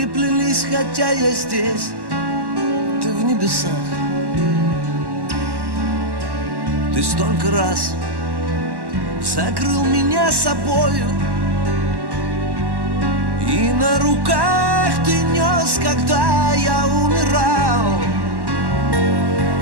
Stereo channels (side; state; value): left; late; 1.1 ms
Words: хотя я здесь, ты в небесах. Ты столько раз закрыл меня собою, и на руках ты нес, когда я умирал.